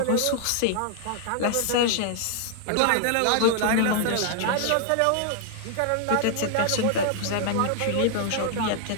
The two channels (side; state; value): both; different; correlation 0.00